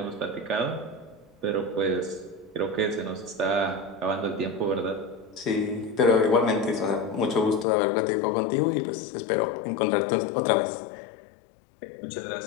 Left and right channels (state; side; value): drops out; right; at 7.7 s